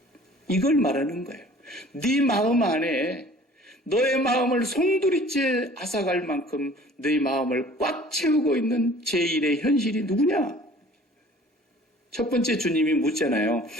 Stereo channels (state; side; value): normal; both; correlation 0.49